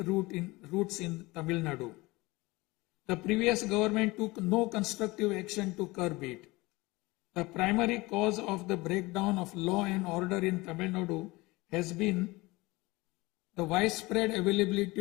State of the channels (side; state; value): right; quieter; 22.1 dB